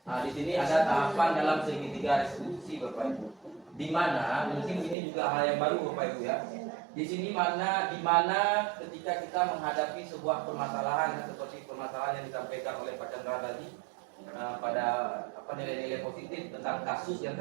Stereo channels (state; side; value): drops out; left; at 5.0 s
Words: Nah, di sini ada tahapan dalam segitiga restitusi Bapak Ibu. Di mana mungkin ini juga hal yang baru Bapak Ibu ya. Di sini di mana ketika kita menghadapi sebuah permasalahan seperti permasalahan yang disampaikan oleh Pak Chandra tadi, pada nilai-nilai positif tentang kasus yang